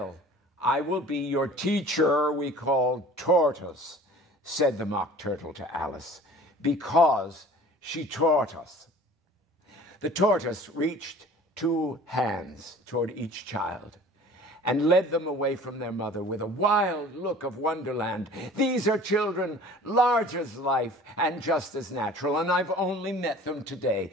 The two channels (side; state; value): both; normal; correlation 0.46